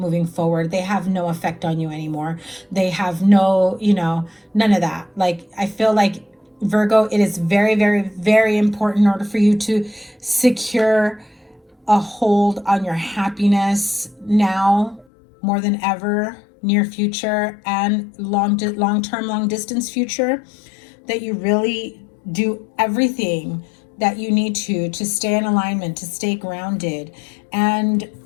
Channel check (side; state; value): right; drops out; at 15.1 s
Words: forward. They have no effect on you anymore. They have no, you know, none of that. Like, I feel like Virgo, it is very, very, very important in order for you to secure a hold on your happiness now more than ever, near future and long-term, long-distance future, that you really do everything that you need to stay in alignment, to stay grounded. And,